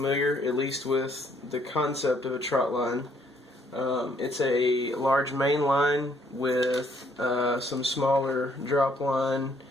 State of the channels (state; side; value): normal; both; correlation 0.67